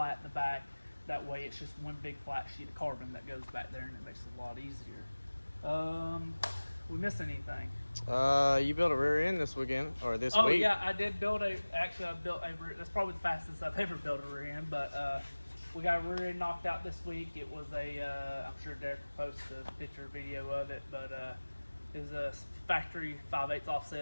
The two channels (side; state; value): both; inverted; correlation -1.00